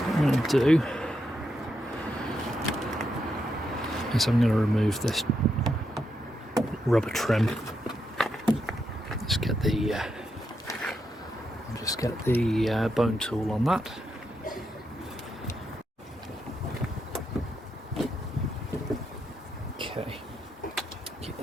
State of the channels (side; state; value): both; normal; correlation 0.82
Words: I'm going to do is I'm going to remove this rubber trim. Just get the bone tool on that. Okay, keep